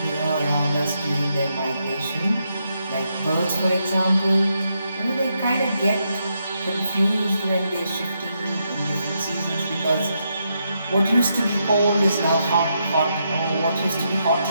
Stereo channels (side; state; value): both; inverted; correlation -0.81